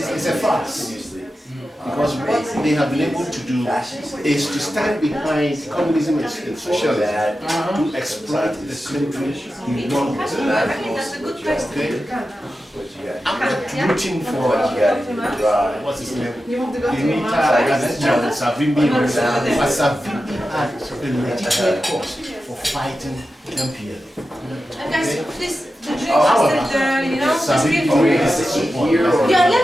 a farce. Because what they have been able to do is to stand behind communism and socialism to exploit the country in one way. I'm not rooting for what's his name? Savimbi, but Savimbi had a legitimate cause for fighting MPL. And guys, please, the drink However, is that, you know, just feel Savimbi free. is support. Yeah,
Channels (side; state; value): both; normal; correlation 0.92